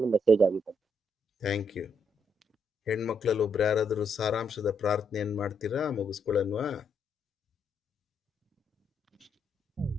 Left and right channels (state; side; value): normal; both; correlation 0.76